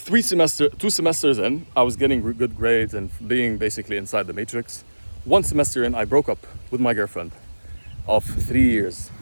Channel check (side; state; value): both; inverted; correlation -1.00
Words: 2 semesters in, I was getting good grades and being basically inside the matrix. 1 semester in, I broke up with my girlfriend of 3 years.